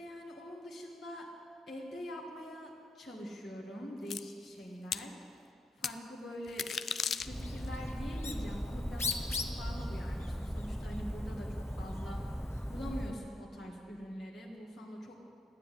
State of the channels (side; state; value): both; normal; correlation 0.82